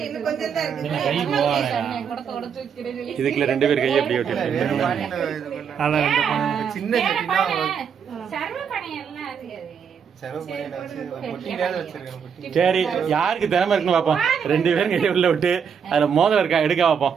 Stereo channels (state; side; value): quieter; left; 7.1 dB